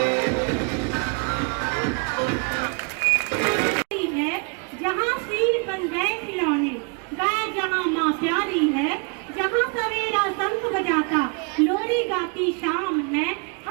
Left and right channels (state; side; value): quieter; left; 35.5 dB